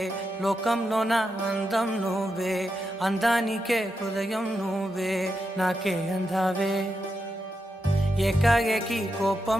లోకంలో నా అందం నువ్వే, అందానికే హృదయం నువ్వే, నాకే అందావే. ఏకాఏకి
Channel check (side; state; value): both; normal; correlation 0.86